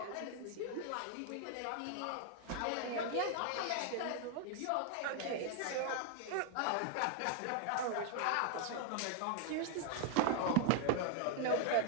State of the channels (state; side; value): different; both; correlation 0.00